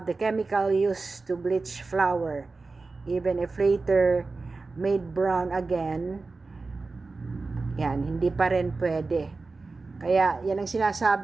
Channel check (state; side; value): quieter; left; 3.8 dB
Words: the chemical used to bleach flour, even if later made brown again, yan, hindi pa rin pwede. Kaya yan ang